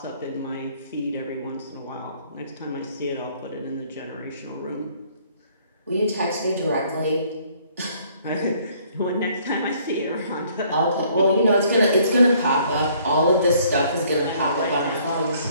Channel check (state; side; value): inverted; both; correlation -0.61